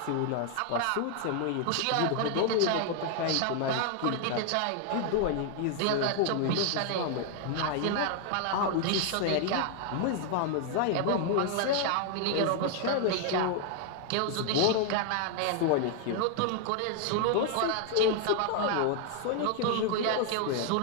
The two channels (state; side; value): different; both; correlation 0.00